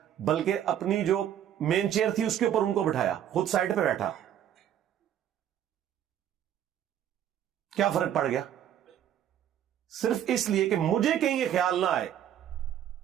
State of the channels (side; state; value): left; quieter; 10.4 dB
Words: بلکہ اپنی جو مین چیئر تھی اس کے اوپر ان کو بٹھایا, خود سائڈ پہ بیٹھا. کیا فرق پڑ گیا؟ صرف اس لیے کہ مجھے کہیں یہ خیال نہ آئے